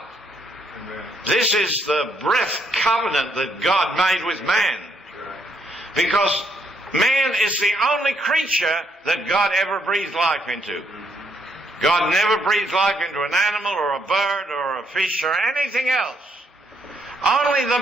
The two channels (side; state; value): both; normal; correlation 0.73